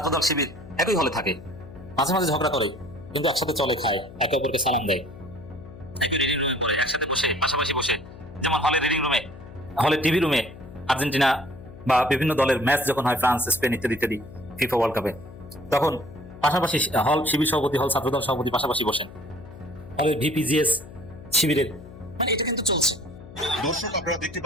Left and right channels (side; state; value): left; noise; hum, 17 dB below the sound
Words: শিবির একই হলে থাকে, মাঝে মাঝে ঝগড়া করে, কিন্তু একসাথে চলে, খায়, একে অপরকে সালাম দেয়, রিডিং রুমে পড়ে একসাথে বসে, পাশাপাশি বসে, যেমন হলে রিডিং রুমে, হলে টিভি রুমে আর্জেন্টিনা বা বিভিন্ন দলের ম্যাচ যখন হয়, ফ্রান্স, স্পেন ইত্যাদি ইত্যাদি, ফিফা ওয়ার্ল্ড কাপে, তখন পাশাপাশি হল শিবির সভাপতি, হল ছাত্রদল সভাপতি পাশাপাশি বসেন, হলে ভিপিজিএস শিবিরের, মানে এটা কিন্তু চলছে। দর্শক, আপনারা দেখতে